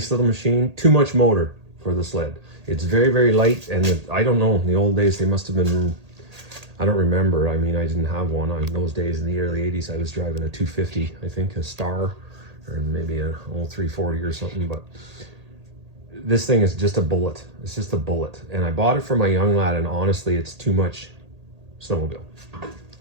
little machine, too much motor for the sled. It's very, very light, and I don't know, in the old days they must have been, I don't remember. I mean, I didn't have one. In those days in the early 80s, I was driving a 250, I think, a Star, or maybe an old 340 or something, but this thing is just a bullet. It's just a bullet. And I bought it for my young lad, and honestly, it's too much snowmobile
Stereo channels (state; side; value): late; left; 1.8 ms